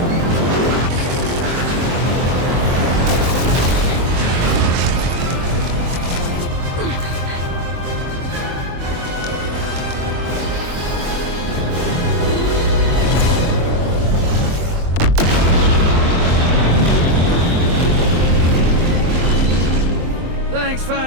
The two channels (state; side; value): late; left; 23 ms